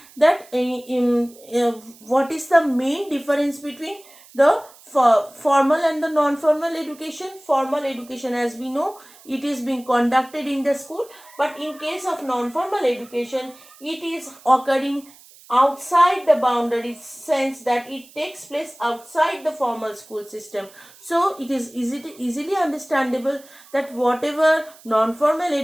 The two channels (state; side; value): noise; right; hiss, 24 dB below the sound